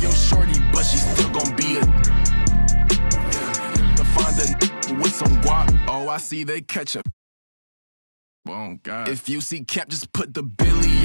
shorty, but she still gon' be a to find a with some guap. Oh, I see they catch up. Oh God. If you see Cap, just put the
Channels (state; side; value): inverted; both; correlation -1.00